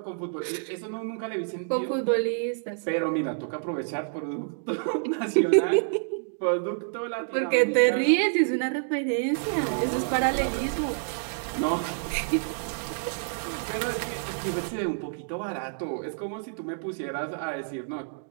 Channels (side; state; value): left; silent; digital silence